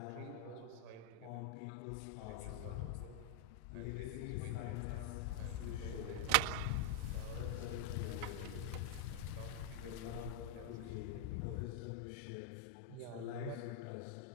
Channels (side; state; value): both; different; correlation 0.00